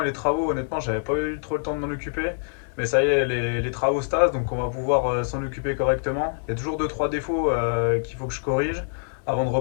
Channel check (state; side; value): silent; right; 62 dB below the other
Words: et les travaux, honnêtement, j'avais pas eu trop le temps de m'en occuper. Mais ça y est, les travaux se tassent, donc on va pouvoir s'en occuper correctement. Il y a toujours deux trois défauts qu'il faut que je corrige avant de